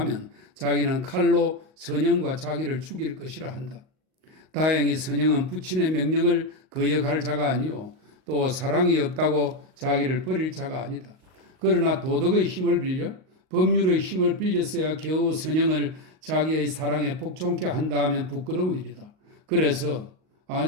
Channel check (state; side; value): late; left; 38 ms